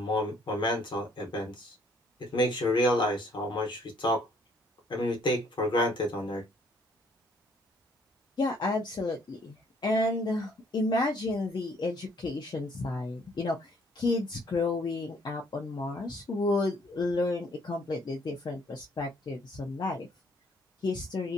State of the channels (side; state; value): both; normal; correlation 0.63